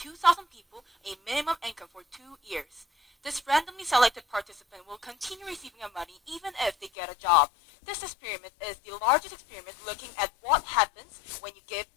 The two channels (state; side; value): drops out; right; at 6.9 s